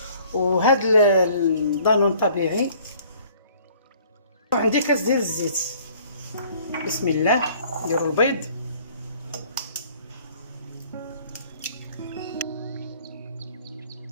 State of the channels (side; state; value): both; inverted; correlation -0.55